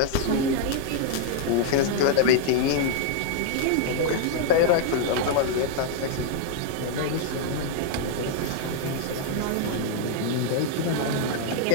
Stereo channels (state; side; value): different; both; correlation 0.00